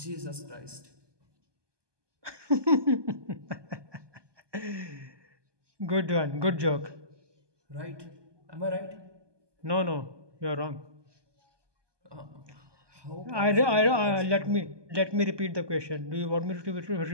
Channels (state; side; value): late; left; 1.2 ms